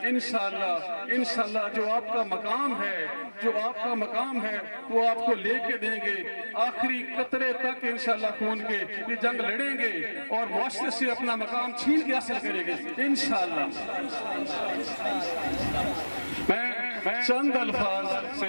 इंशाअल्लाह इंशाअल्लाह जो आपका मकाम है, जो आपका मकाम है वो आपको लेके देंगे आखिरी कतरे तक। इंशाअल्लाह खून के ये जंग लड़ेंगे और मुआशरे से अपना मकाम छीन के हासिल करेंगे इंशाअल्लाह। मैं चंद अल्फाज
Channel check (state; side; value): inverted; both; correlation -1.00